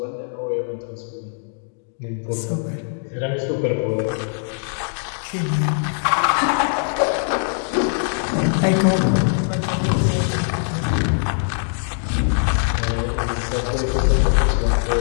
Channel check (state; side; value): silent; right; 65 dB below the other